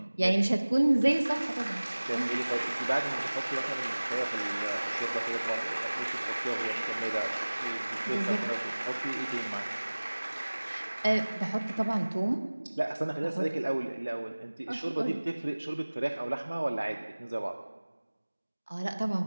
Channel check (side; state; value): both; inverted; correlation -1.00